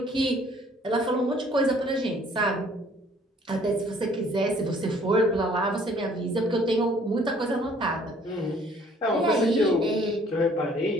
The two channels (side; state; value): both; normal; correlation 0.58